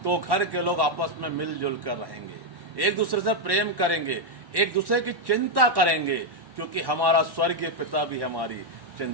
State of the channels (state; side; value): late; left; 1.1 ms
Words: तो घर के लोग आपस में मिलजुल कर रहेंगे, एक दूसरे से प्रेम करेंगे, एक दूसरे की चिंता करेंगे, क्योंकि हमारा स्वर्गीय पिता भी हमारी